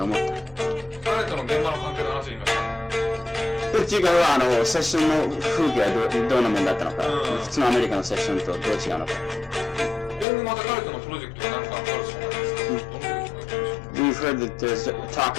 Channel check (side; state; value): right; drops out; at 10.2 s